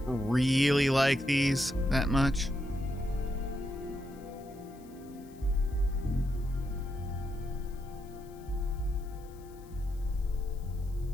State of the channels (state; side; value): noise; left; hiss, 27 dB below the sound